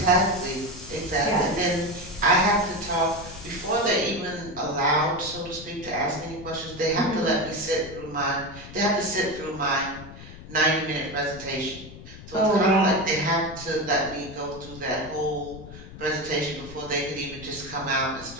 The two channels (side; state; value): left; noise; rumble, 15 dB below the sound